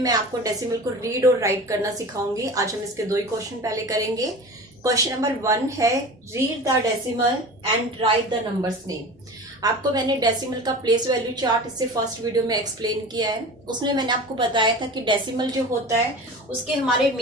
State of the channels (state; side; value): normal; both; correlation 0.35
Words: आपको डेसिमल को रीड और राइट करना सिखाऊंगी। आज हम इसके दो ही क्वेश्चन पहले करेंगे। क्वेश्चन नंबर 1 है read the decimal and right the numbers name. आपको मैंने डेसिमल का प्लेस वैल्यू चार्ट इससे फर्स्ट वीडियो में एक्सप्लेन किया है। उसमें मैंने आपको बताया था कि डेसिमल जो होता है उसके हमारे